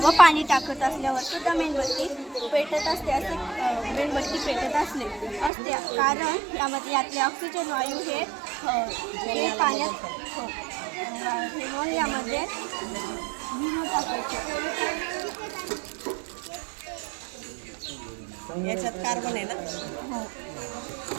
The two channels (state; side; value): drops out; left; at 5.5 s